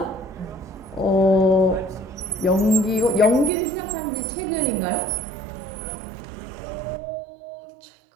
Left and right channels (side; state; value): left; drops out; at 3.5 s